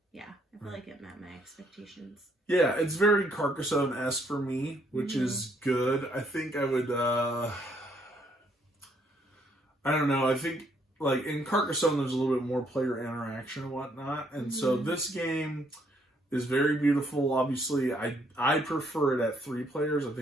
yeah, I feel like it met my expectations. Yeah, it's very Carcassonne-esque for me, which is good. I think I would, I don't know. I think, like, in Carcassonne, there's a little bit more player interaction and whatnot. And so this game is very beautiful. Obviously, I prefer it at 3 players. I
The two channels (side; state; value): both; normal; correlation 0.69